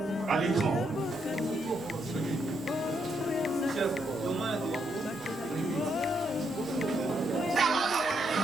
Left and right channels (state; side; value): normal; both; correlation 0.77